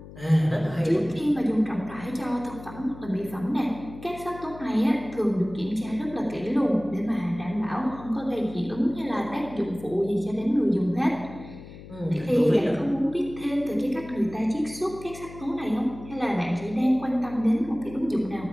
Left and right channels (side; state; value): left; noise; hum, 16 dB below the sound